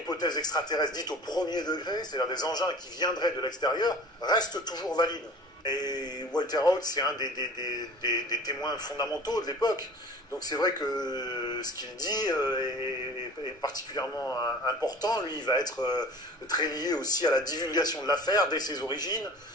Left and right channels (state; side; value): normal; both; correlation 0.43